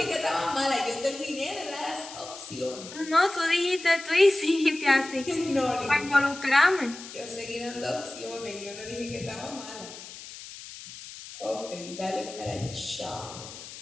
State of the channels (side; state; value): left; noise; hiss, 14 dB below the sound